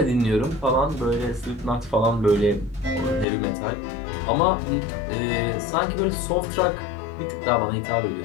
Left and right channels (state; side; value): drops out; right; at 3.2 s